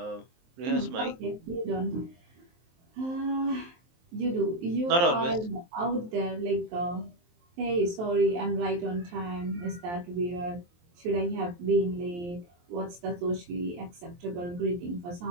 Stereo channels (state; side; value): late; left; 23 ms